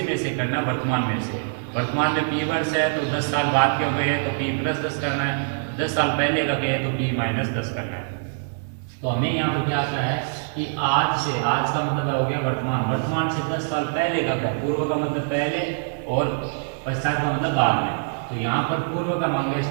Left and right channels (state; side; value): silent; left; 63 dB below the other